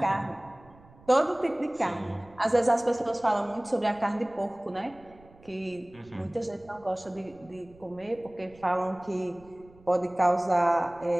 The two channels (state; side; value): noise; right; rumble, 25 dB below the sound